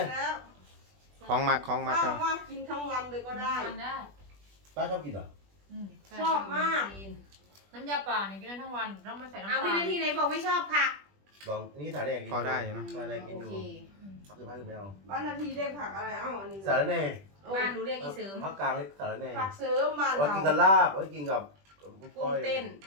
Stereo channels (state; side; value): late; left; 20 ms